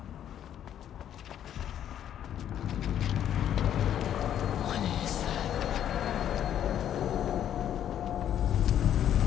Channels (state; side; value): quieter; right; 10.3 dB